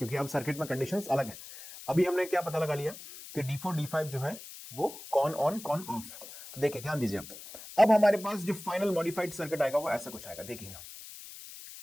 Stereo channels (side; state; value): left; noise; hiss, 14 dB below the sound